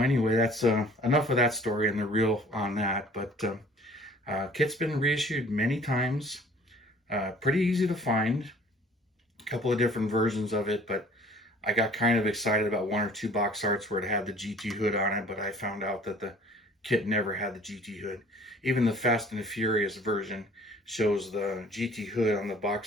that's enough of that story and the reel on that. But kit's been reissued many times. Pretty easy to find. A couple of different versions of it, but I got kind of excited about one or two box arts where it had the GT hood on it, but I found out that the kit never had the GT hood. Even the Fast and the Furious version shows the GT hood on the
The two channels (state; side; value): normal; both; correlation 0.52